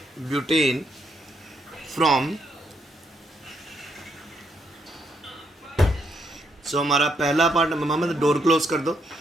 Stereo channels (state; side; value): normal; both; correlation 0.76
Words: from. So हमारा पहला पार्ट, मोहम्मद डोर क्लोज कर दो।